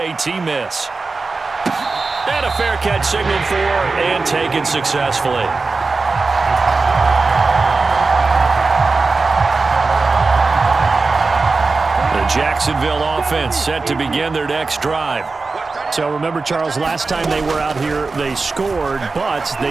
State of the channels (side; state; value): left; quieter; 4.0 dB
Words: miss. And a fair catch signaled for and taken successfully. The Jacksonville offense set to begin their next drive. So remember, Charles, last time they were out here, they scored, but